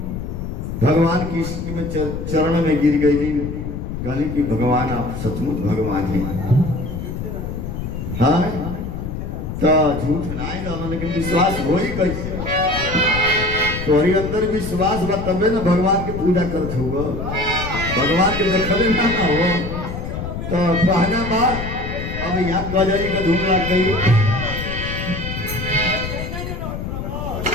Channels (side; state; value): left; noise; rumble, 6 dB below the sound